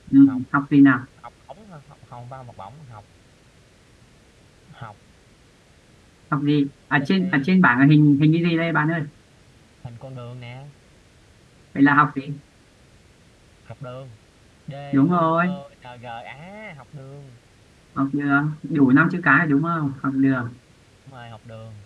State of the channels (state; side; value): identical; both; correlation 1.00